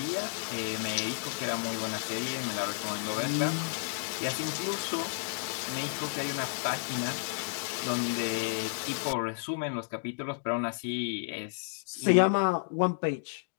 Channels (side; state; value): right; silent; digital silence